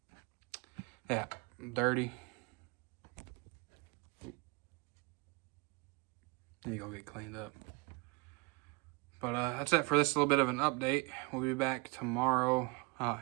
Yeah, dirty. Need to go get cleaned up. But that's it for this little bit of an update. We'll be back tomorrow out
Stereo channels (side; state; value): left; quieter; 28.1 dB